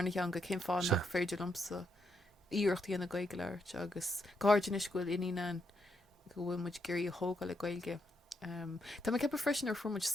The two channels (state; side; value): normal; both; correlation 0.79